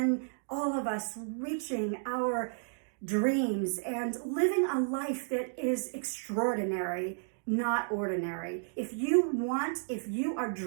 all of us reaching our dreams and living a life that is extraordinary, not ordinary. If you are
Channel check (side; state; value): left; silent; digital silence